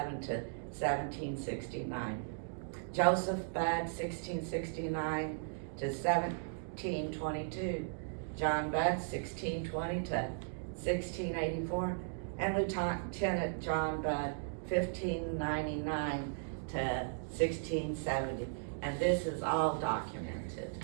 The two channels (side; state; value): left; silent; digital silence